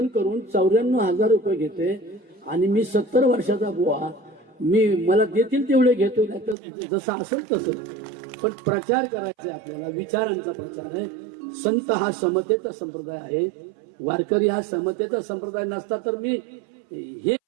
करून 94,000 रुपये घेते आणि मी 70 वर्षाचा बुवा, मला देतील तेवढे घेतोय, नाही तर जसं असेल तसं. पण प्रचार करायचा आपल्याला, विचारांचा प्रचार आहे. संत हा समतेचा संप्रदाय आहे, वारकरी हा समतेचा संप्रदाय नसता तर मी हे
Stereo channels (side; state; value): left; drops out; at 6.6 s